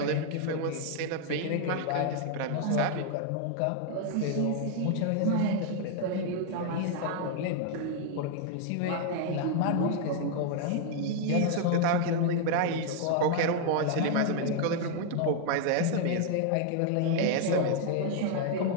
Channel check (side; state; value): both; different; correlation 0.00